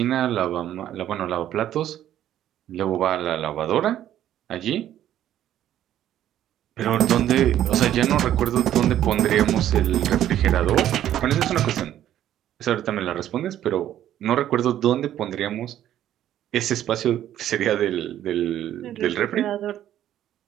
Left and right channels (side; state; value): left; quieter; 11.7 dB